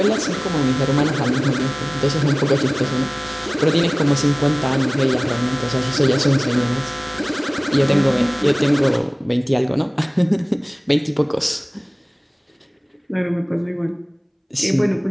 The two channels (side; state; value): both; identical; correlation 1.00